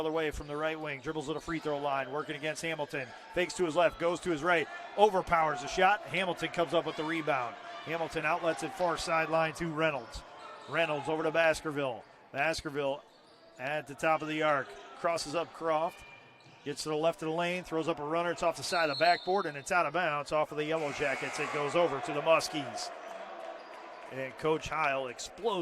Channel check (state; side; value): identical; both; correlation 1.00